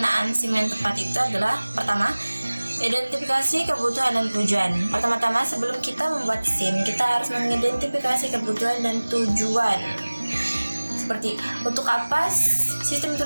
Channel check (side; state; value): both; inverted; correlation -1.00